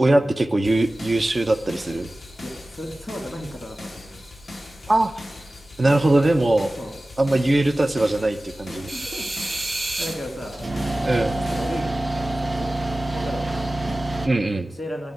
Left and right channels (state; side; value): normal; both; correlation 0.97